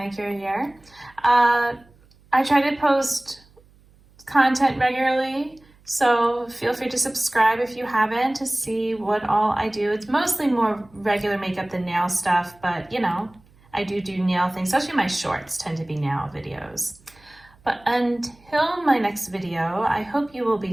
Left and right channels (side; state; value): right; noise; hum, 29 dB below the sound